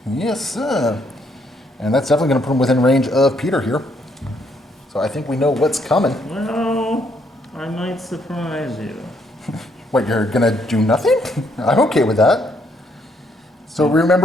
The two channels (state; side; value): normal; both; correlation 0.71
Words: Yes, sir. And that's definitely gonna put him within range of Peter here. So I think we know what's coming. Well, I might surprise you. What, you're gonna do nothing? I'm okay with that. So